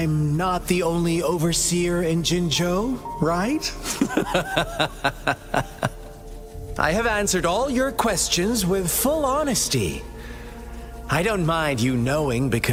not the only overseer in Jinzhou, right? I have answered all your questions with full honesty. I don't mind you knowing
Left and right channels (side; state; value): both; identical; correlation 1.00